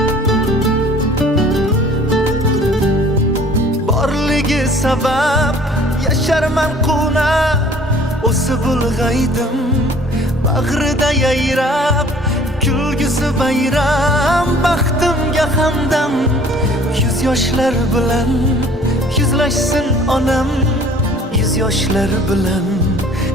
sabab yasharman quvnab o'sib ulg'aydim bag'rida yayrab kulgisi bayram. Baxtimga hamdam yuz yoshlar bilan yuzlashsin onam, yuz yoshlar bilan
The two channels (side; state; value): both; normal; correlation 0.52